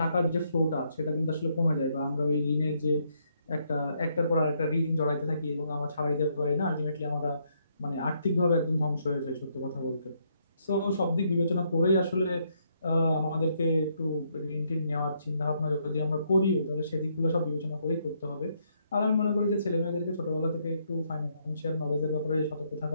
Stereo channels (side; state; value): both; inverted; correlation -0.74